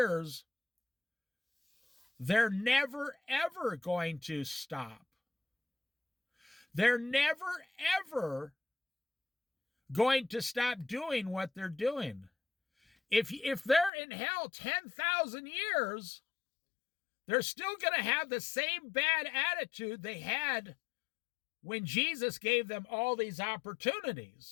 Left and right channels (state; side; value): drops out; right; at 13.9 s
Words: they're never, ever going to stop. They're never, ever going to stop doing what they're doing. If they're in hell 10,000 years, they're still going to have the same bad attitude they had when Jesus gave them all these